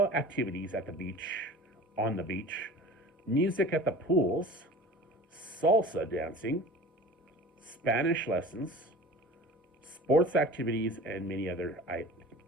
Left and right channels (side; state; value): both; normal; correlation 0.39